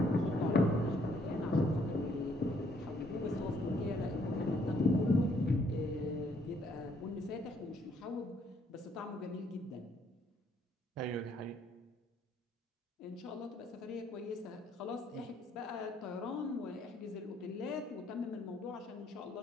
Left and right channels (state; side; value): normal; both; correlation 0.68